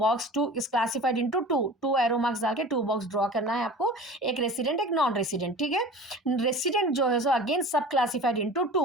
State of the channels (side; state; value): both; normal; correlation 0.38